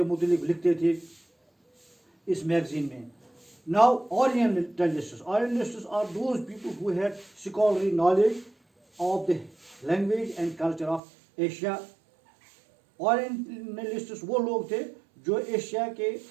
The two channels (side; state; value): left; drops out; at 11.0 s